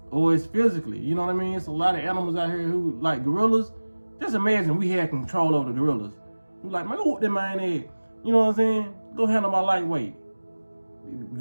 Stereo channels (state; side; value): inverted; both; correlation -1.00